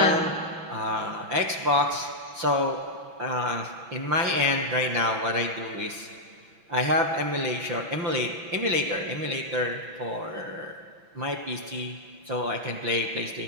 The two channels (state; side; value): late; left; 6.0 ms